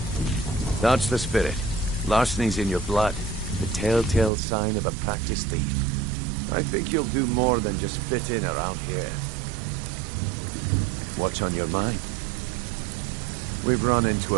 That's the spirit. Larceny's in your blood. The telltale sign of a practiced thief. I think you'll do more than just fit in around here. What's on your mind? We've run into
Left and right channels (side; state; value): left; drops out; at 4.3 s